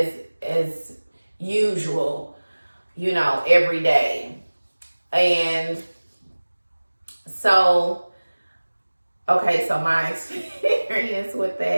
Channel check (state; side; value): inverted; both; correlation -1.00